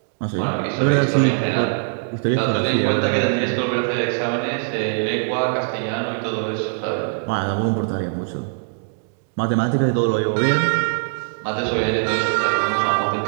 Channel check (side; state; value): left; silent; digital silence